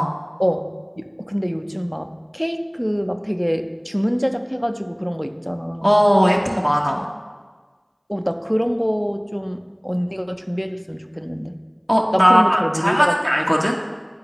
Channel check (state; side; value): identical; both; correlation 1.00